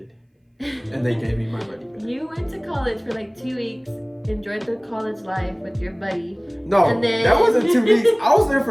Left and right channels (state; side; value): identical; both; correlation 1.00